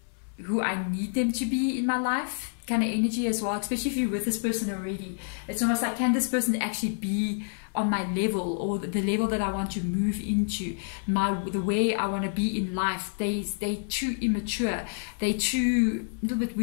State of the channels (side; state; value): right; silent; 59 dB below the other